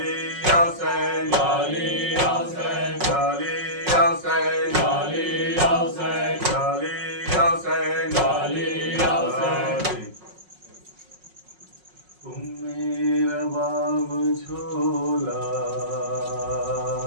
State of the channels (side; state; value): left; late; 5.5 ms